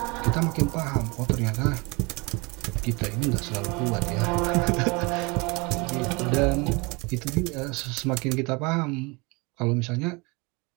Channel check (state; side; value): quieter; left; 27.2 dB